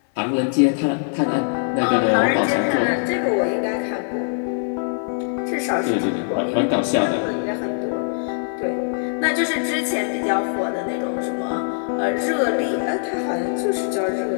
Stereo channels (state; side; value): silent; right; 59 dB below the other